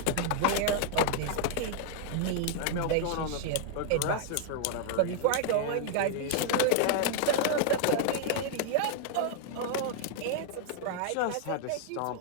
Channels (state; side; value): different; both; correlation 0.00